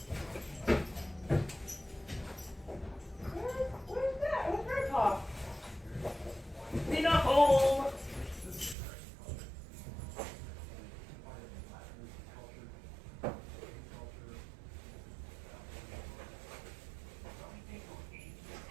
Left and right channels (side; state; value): left; drops out; at 8.8 s